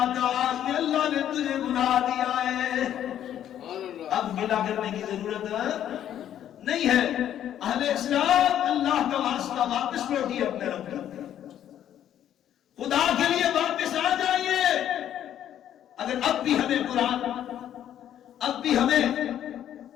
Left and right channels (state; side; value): quieter; right; 10.7 dB